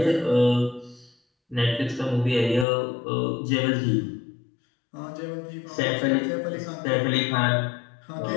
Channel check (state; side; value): drops out; right; at 2.7 s